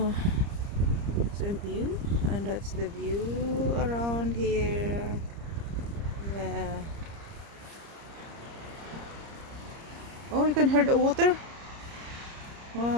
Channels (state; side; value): late; left; 30 ms